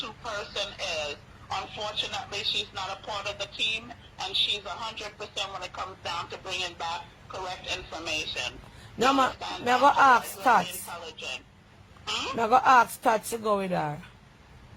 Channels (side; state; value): both; identical; correlation 1.00